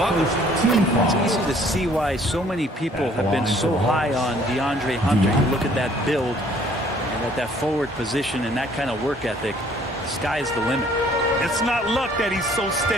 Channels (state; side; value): normal; both; correlation 0.59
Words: It's easy to see why so many people have been so high on DeAndre Hunter. You look at that build and at that forward position and that kind of work ethic. The sky's the limit. It's not luck that he's so